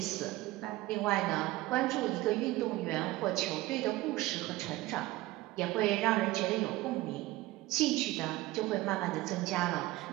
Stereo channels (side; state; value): left; quieter; 18.3 dB